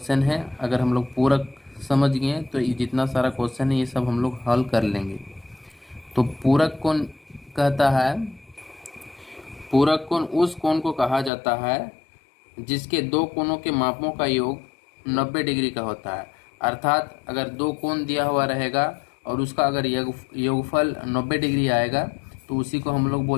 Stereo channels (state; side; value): drops out; right; at 11.3 s